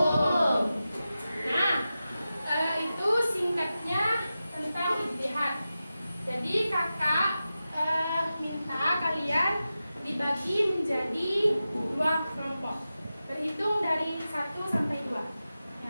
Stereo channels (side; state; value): both; inverted; correlation -0.93